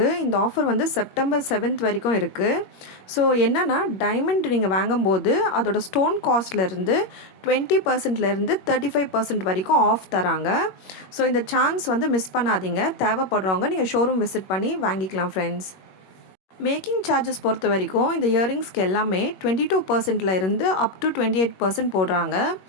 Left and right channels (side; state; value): right; late; 21 ms